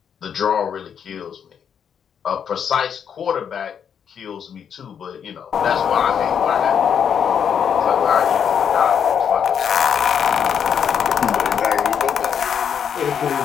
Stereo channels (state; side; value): quieter; right; 7.8 dB